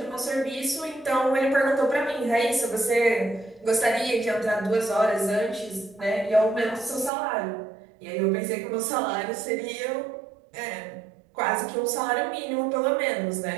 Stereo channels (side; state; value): left; drops out; at 7.1 s